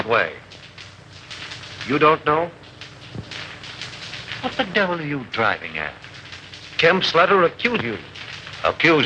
way? You don't know? What the devil are you driving at? Kemp's letter accused you.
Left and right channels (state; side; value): identical; both; correlation 1.00